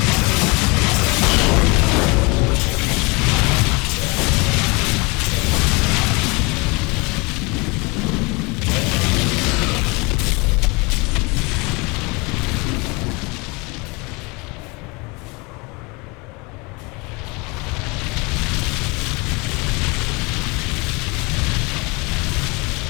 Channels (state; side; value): quieter; right; 27.4 dB